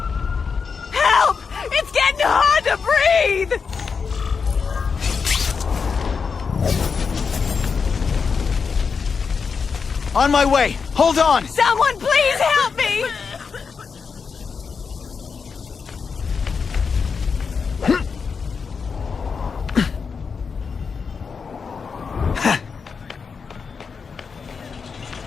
Help! It's getting hard to breathe! On my way. Hold on. Someone please help me!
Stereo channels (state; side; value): quieter; right; 5.5 dB